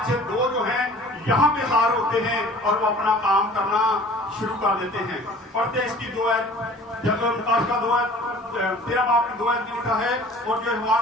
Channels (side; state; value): both; normal; correlation 0.47